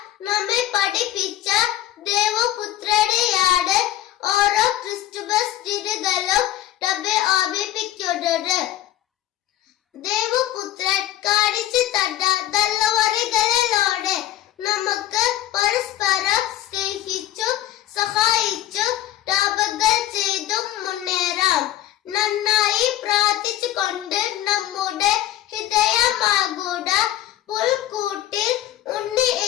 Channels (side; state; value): right; quieter; 13.3 dB